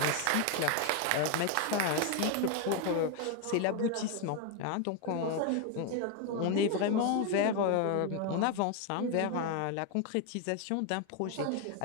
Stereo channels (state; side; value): different; both; correlation 0.01